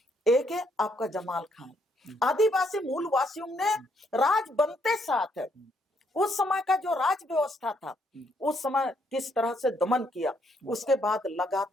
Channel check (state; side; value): normal; both; correlation 0.72